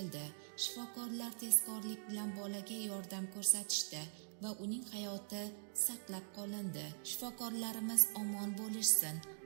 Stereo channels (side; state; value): left; silent; digital silence